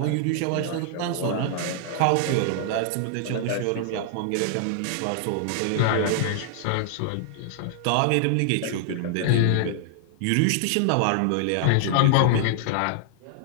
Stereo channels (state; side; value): different; both; correlation -0.01